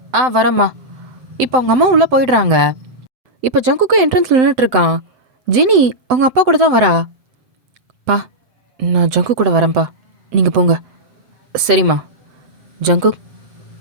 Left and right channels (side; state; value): left; late; 7.8 ms